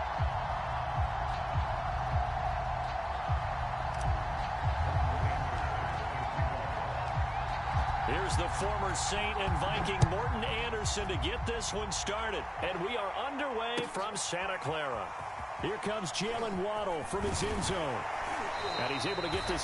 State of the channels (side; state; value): both; identical; correlation 1.00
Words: Here's the former Saint and Viking Morton Anderson to get this one started. And we are underway from Santa Clara. Here comes Jalen Waddle from his end zone. And he's able to get this